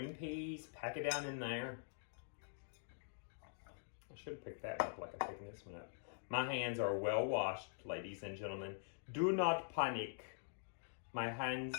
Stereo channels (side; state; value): right; silent; digital silence